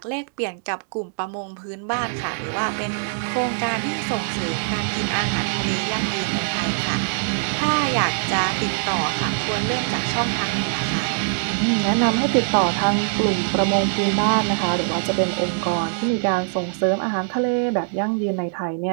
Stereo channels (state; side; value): silent; left; 64 dB below the other